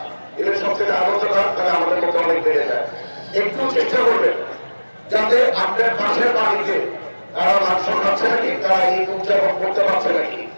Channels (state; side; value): inverted; both; correlation -1.00